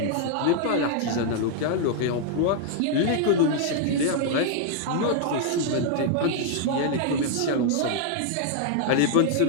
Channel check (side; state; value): both; different; correlation 0.00